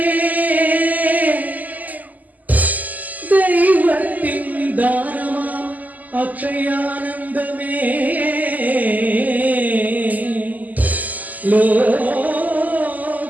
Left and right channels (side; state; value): left; late; 0.080 ms